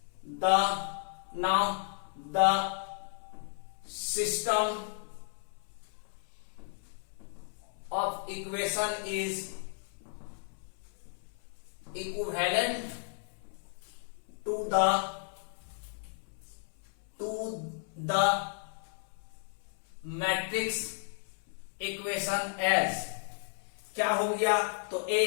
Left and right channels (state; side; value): silent; right; 55 dB below the other